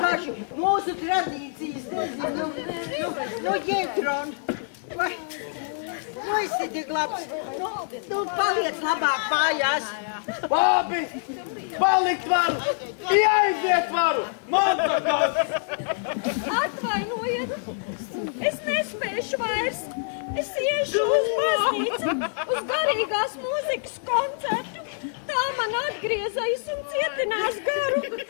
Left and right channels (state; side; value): silent; right; digital silence